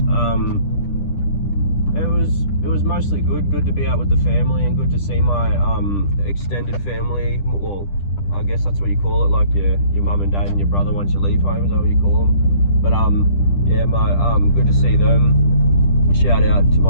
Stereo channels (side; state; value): right; late; 10 ms